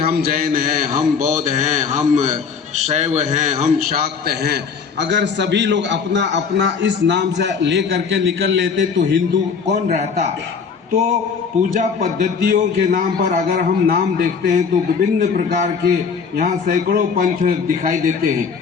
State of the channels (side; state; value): right; quieter; 5.9 dB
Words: जैन हैं, हम बौद्ध हैं, हम शैव हैं, हम शाक्त हैं। अगर सभी लोग अपना अपना इस नाम से ले करके निकल लेते तो हिंदू कौन रहता? तो पूजा पद्धतियों के नाम पर अगर हम नाम देखते हैं तो विभिन्न प्रकार के यहाँ सैकड़ों पंथ दिखाई देते हैं,